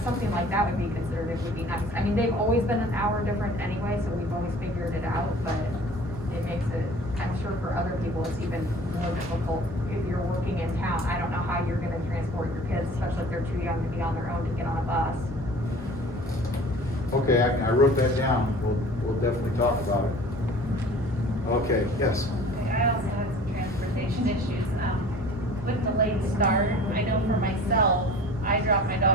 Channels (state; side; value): normal; both; correlation 0.45